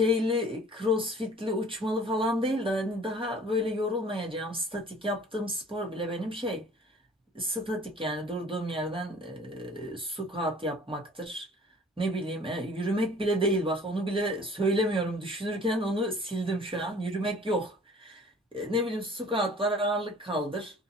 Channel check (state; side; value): normal; both; correlation 0.50